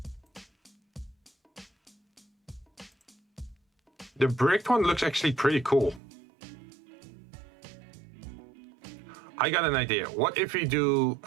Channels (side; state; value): left; drops out; at 6.0 s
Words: The bricked one looks actually pretty cool. I got an idea. What if we do